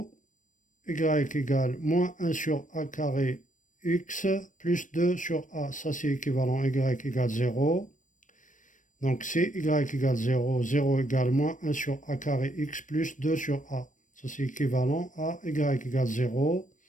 y égale moins 1 sur A carré x plus 2 sur A. Ça, c'est équivalent y égale 0. Donc, c'est y égale 0. 0 égale moins 1 sur A carré x plus 2 sur A. Ça, c'est équivalent à y égale 0.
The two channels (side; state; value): right; late; 0.37 ms